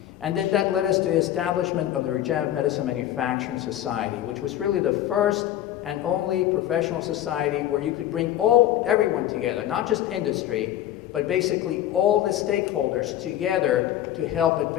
And then that led us to the establishment of the Regenerative Medicine Manufacturing Society, which was really the first and only professional society where you could bring everyone together, not just industry, but basically all the stakeholders together to help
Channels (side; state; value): right; quieter; 12.4 dB